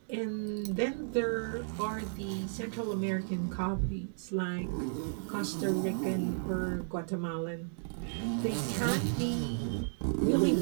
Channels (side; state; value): left; silent; digital silence